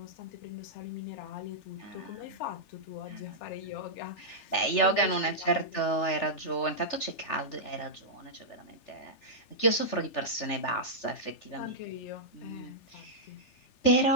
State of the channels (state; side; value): late; right; 3.4 ms